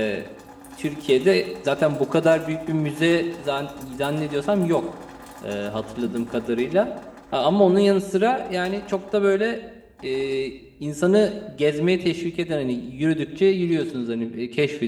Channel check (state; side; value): identical; both; correlation 1.00